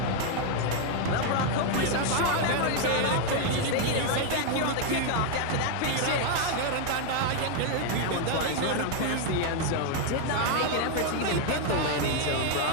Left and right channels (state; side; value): different; both; correlation 0.01